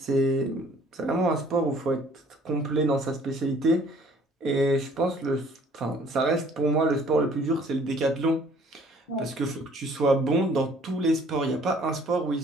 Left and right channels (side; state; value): both; normal; correlation 0.56